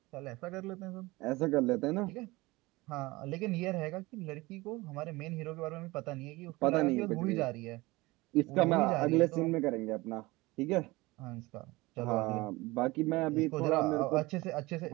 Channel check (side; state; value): left; quieter; 21.5 dB